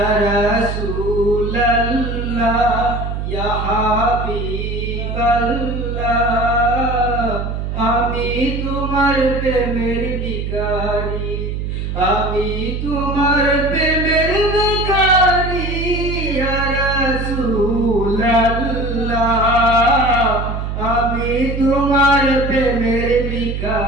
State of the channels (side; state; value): right; noise; hum, 4 dB below the sound